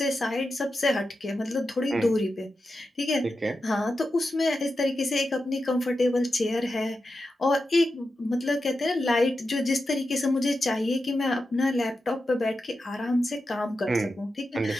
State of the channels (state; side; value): normal; both; correlation 0.90